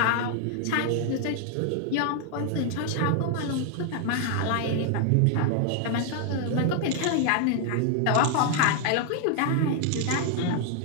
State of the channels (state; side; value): different; both; correlation 0.00